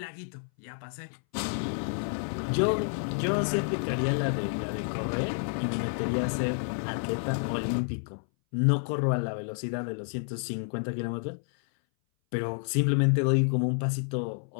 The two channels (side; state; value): right; silent; 58 dB below the other